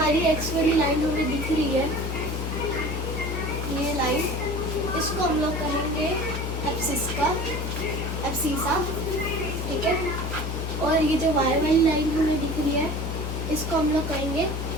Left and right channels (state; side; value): noise; left; hum, 3 dB below the sound